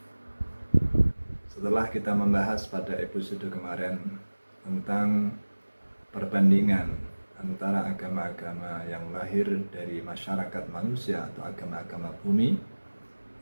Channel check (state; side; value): inverted; both; correlation -1.00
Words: setelah kita membahas pada episode kemarin tentang perbandingan antara agama-agama yang lahir dari masyarakat manusia atau agama-agama bumi